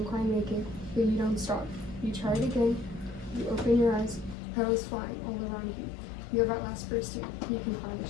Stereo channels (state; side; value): drops out; right; at 4.4 s